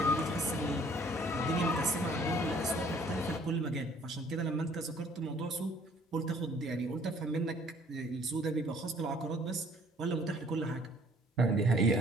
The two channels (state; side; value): normal; both; correlation 0.58